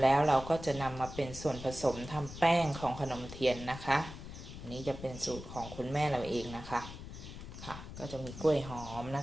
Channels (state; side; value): noise; left; rumble, 12 dB below the sound